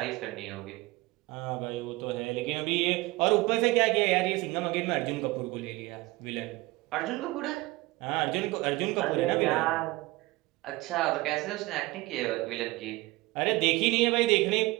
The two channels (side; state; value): left; quieter; 21.0 dB